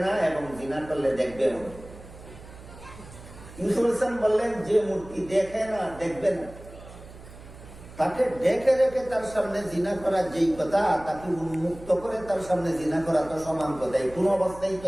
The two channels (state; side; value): noise; right; hum, 17 dB below the sound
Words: না এবং জিনা করলে দেখবে। ইউসুফ আলাইহিস সালাম বললেন, যে মূর্তি দেখে না, দেখবে না, তাকে ডেকে রেখে তার সামনে জিনা করা যেই কথা, তাকে উন্মুক্ত করে তার সামনে জিনা করা তো সমান কথাই, কোন অবস্থায়